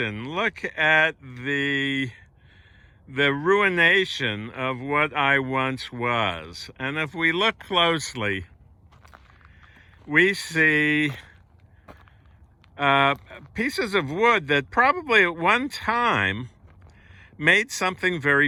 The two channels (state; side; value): identical; both; correlation 1.00